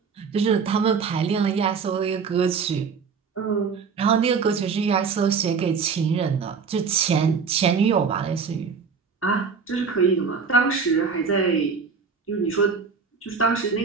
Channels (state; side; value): quieter; left; 5.6 dB